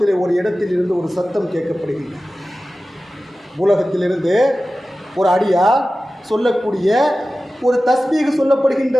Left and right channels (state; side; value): normal; both; correlation 0.95